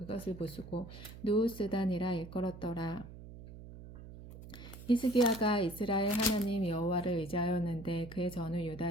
부수고 누우스단이라 일컬었더라. 히스기야가 이스라엘 하나님 여호와를 의지하였는데 그의 전후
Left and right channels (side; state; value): right; noise; hum, 15 dB below the sound